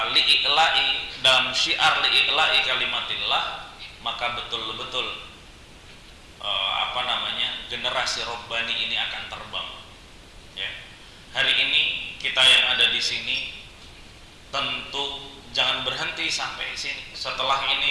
dalam syiar li'i'la'i kalimatillah, maka betul-betul generasi Rabbani ini akan terbang, ya. Hari ini kita yang ada di sini tentu jangan berhenti sampai sini. Setelah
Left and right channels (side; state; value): both; identical; correlation 1.00